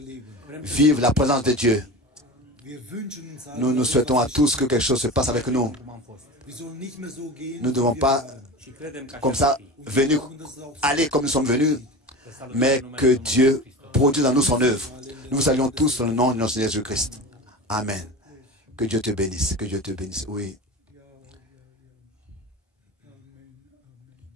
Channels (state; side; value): normal; both; correlation 0.30